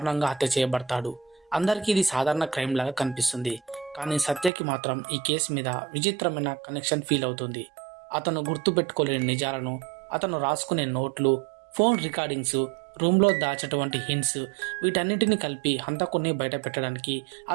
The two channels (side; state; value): left; drops out; at 4.5 s